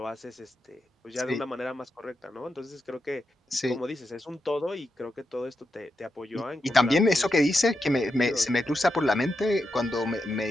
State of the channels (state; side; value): normal; both; correlation 0.86